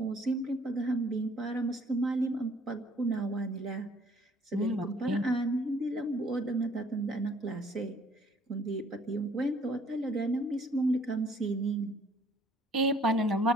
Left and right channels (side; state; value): both; normal; correlation 0.59